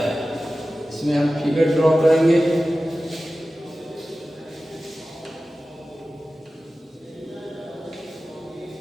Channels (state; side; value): normal; both; correlation 0.95